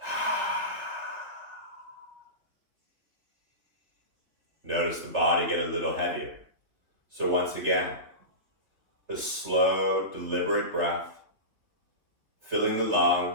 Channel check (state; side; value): late; left; 3.5 ms